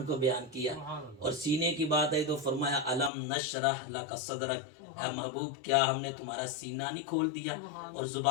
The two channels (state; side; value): drops out; right; at 3.1 s